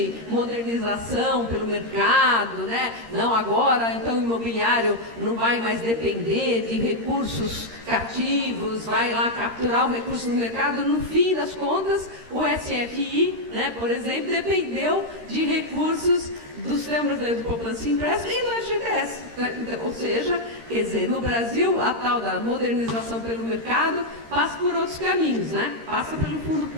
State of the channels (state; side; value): late; left; 13 ms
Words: modernização pelo mercado, né? Não, agora então o imobiliário não vai mais depender de recursos cativos, vai lá capturar o recurso no mercado. No fim das contas, o SFI, né, por exemplo, dependeu de recursos do Sistema Brasileiro de Poupança e Empréstimo e do FGTS. Né? Ou seja, quer dizer, no Brasil, a tal da modernização pelo mercado passa por outros caminhos, né? Passa pelo fundo